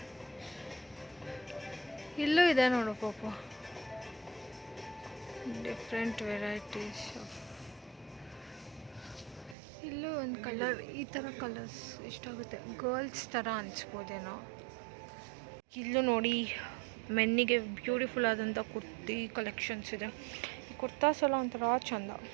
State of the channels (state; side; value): drops out; left; at 9.6 s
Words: ಇಲ್ಲೂ ಇದೆ ನೋಡು ಪಾಪ, ಡಿಫ್ರೆಂಟ್ ವೆರೈಟೀಸ್ ಆಫ್. ಇಲ್ಲೂ ಒಂದು ಕಲರ್, ಈ ಥರ ಕಲರ್ಸ್ ಇಷ್ಟಾಗುತ್ತೆ. ಗರ್ಲ್ಸ್ ಥರ ಅನಿಸ್ಬೋದೇನೋ. ಇಲ್ಲೂ ನೋಡಿ ಮೆನ್ನಿಗೆ ಬ್ಯೂಟಿಫುಲ್ ಆದಂಥ ಕುರ್ತಿ ಕಲೆಕ್ಷನ್ಸ್ ಇದೆ. ಈ ಕುರ್ತಾಸ್ ಎಲ್ಲ ಒಂಥರ ಚಂದ.